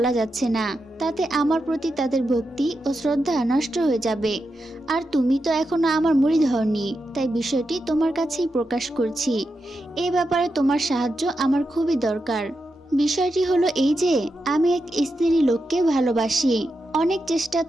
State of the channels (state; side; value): normal; both; correlation 0.87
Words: যাচ্ছে না। তাতে আমার প্রতি তাদের ভক্তি ও শ্রদ্ধা নষ্ট হয়ে যাবে। আর তুমি তো এখনো আমার মুরিদ হওনি, তাই বিষয়টি তোমার কাছেই প্রকাশ করছি। এ ব্যাপারে তোমার সাহায্য আমার খুবই দরকার। বিষয়টি হলো এই যে, আমি এক স্ত্রী লোককে ভালোবাসি। অনেক চেষ্টা